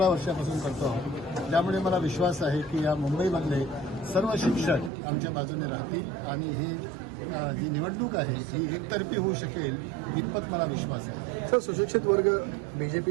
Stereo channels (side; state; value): left; drops out; at 4.9 s